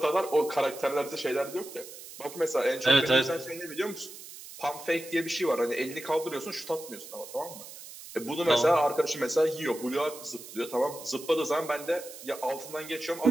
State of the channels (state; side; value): noise; right; hiss, 14 dB below the sound